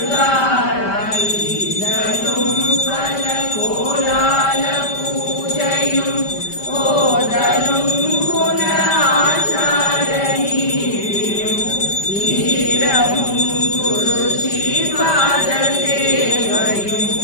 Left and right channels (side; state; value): right; late; 5.1 ms